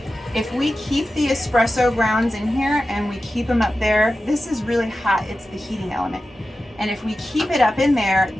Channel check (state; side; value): normal; both; correlation 0.93